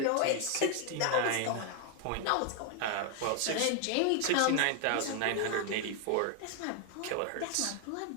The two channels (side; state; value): both; different; correlation 0.00